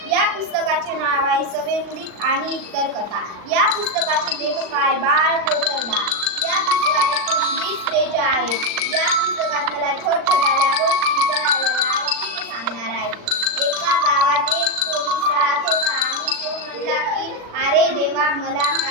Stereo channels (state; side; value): late; left; 39 ms